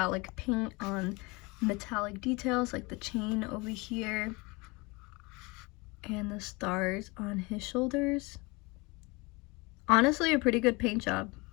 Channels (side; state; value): right; quieter; 25.9 dB